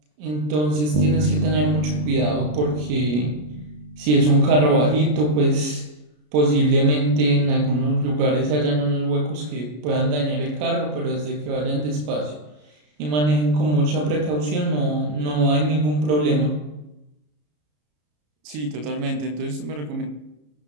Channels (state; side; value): late; left; 33 ms